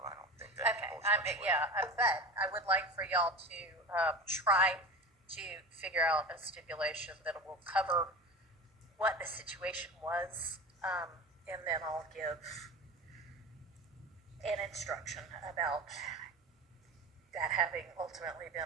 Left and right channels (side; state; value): both; normal; correlation 0.30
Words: don't think that... Okay, but I would like for y'all to try to figure out a stipulation that will cover what the situation was, and then I'll give an instruction about that having ultimately been